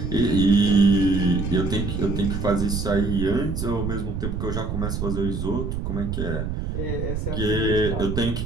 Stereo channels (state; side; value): noise; right; rumble, 3 dB below the sound